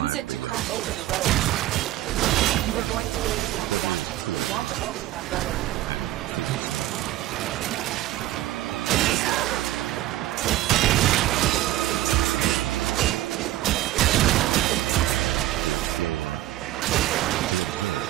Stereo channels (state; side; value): quieter; left; 15.0 dB